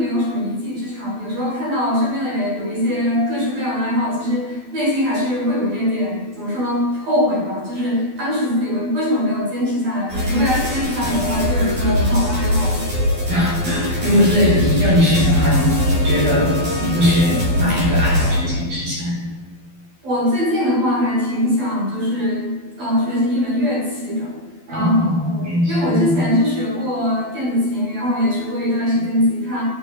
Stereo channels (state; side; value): late; left; 12 ms